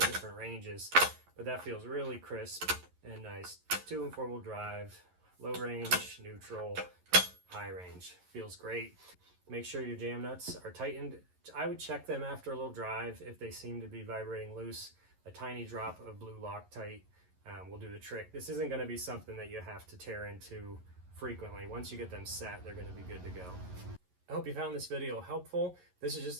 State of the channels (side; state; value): left; late; 11 ms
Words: different ranges, but that feels really crisp and nice. 2- and 4-wheel drive, low range, neutral, high range. Feels great. Make sure your jam nuts are tightened. I would check them after a little drive. If they seem to be vibrating loose, a tiny drop of blue Loctite will do the trick. This isn't going to be something that you have to tear into frequently. Once you get them set, they're going to be good to go. I hope you found this video helpful. This is just